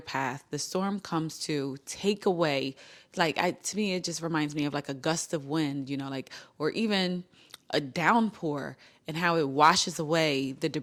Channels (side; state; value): both; identical; correlation 1.00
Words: The storm comes to take away, to me, it just reminds me of like a gust of wind, or even a downpour, and how it washes away the